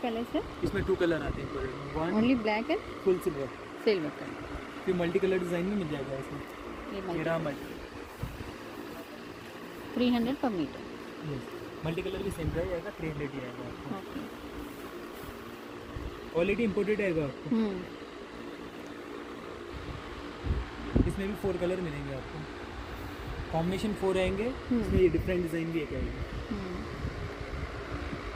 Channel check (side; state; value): both; identical; correlation 1.00